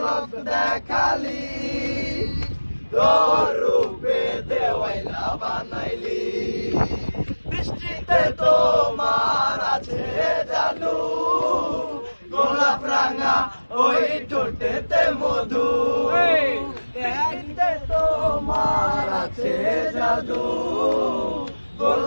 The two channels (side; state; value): both; inverted; correlation -1.00